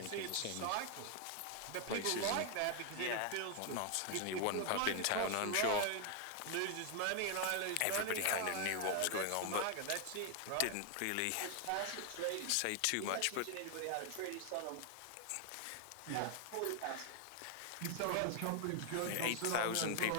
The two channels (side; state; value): both; different; correlation 0.00